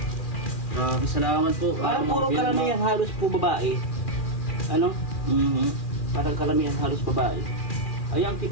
Grabe, salamat po. Parang puro karamihan halos po babae. Ano? Mhm. Parang karamihan halos babae. Ay, ang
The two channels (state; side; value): late; right; 2.4 ms